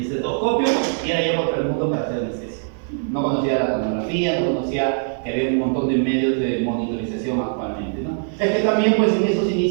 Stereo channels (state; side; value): silent; left; 65 dB below the other